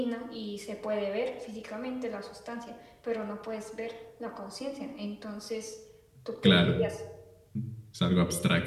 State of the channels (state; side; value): identical; both; correlation 1.00